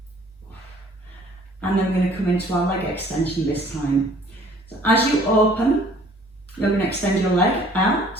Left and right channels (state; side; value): normal; both; correlation 0.55